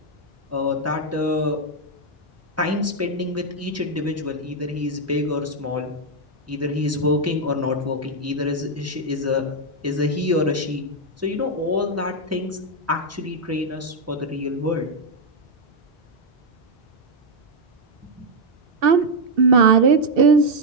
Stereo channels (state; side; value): normal; both; correlation 0.00